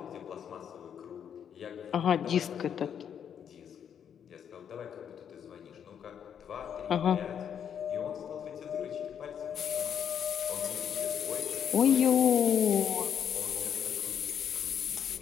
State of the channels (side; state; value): right; quieter; 8.4 dB